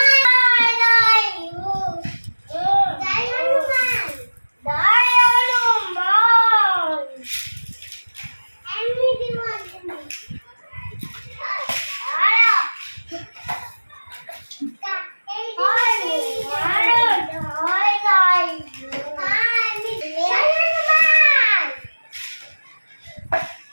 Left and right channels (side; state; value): both; inverted; correlation -1.00